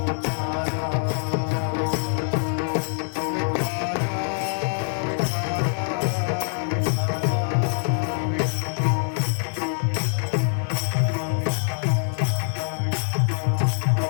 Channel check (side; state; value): right; silent; digital silence